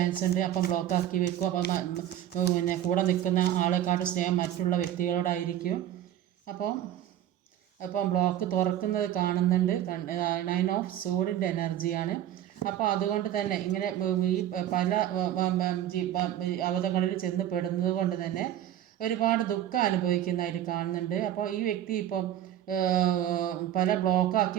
ഉണ്ട്. അപ്പം ബ്ലോക്കാക്കി വെക്കും. അപ്പം പിന്നെ കൂടെ നിൽക്കുന്ന ആളെക്കാട്ട് സ്നേഹം മറ്റുള്ള വ്യക്തികളോടായിരിക്കും. അപ്പം ബ്ലോക്ക് തുറക്കുന്നത് കാണുന്നുണ്ട്. 9 of Swords എനർജിയാണ്. അപ്പോൾ അതുകൊണ്ട് തന്നെ ഇങ്ങനെ ഈ പല അവസ്ഥകളിൽ ചെന്ന് പെടുന്നത് കൊണ്ട് തന്നെ ഒരുപാട് ദുഃഖം അനുഭവിക്കുന്നതായിട്ട് കാണുന്നുണ്ട്. അപ്പോൾ ഈ വ്യക്തി ഇപ്പം പല ബ്ലോക്കാക്കി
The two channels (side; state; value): left; quieter; 11.8 dB